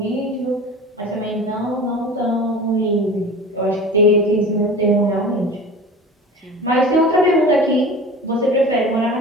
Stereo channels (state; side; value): normal; both; correlation 0.37